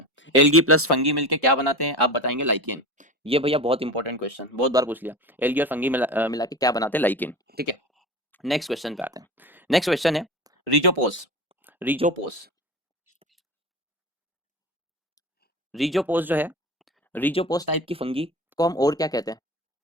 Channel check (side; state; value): both; normal; correlation 0.29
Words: एल्गी प्लस फंगी मिलके क्या बनाते हैं, आप बताएंगे लाइकेन, ये भैया बहुत इंपॉर्टेंट क्वेश्चन, बहुत बार पूछ लिया, एल्गी और फंगी मिला के क्या बनाते हैं, लाइकेन, ठीक है। नेक्स्ट क्वेश्चन पे आते हैं, नेक्स्ट क्वेश्चन है रिजोपोस, रिजोपोस, रिजोपोस जो है, रिजोपोस टाइप की फंगी को हम और क्या कहते हैं,